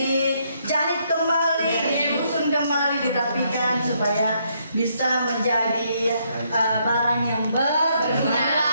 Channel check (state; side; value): inverted; both; correlation -0.73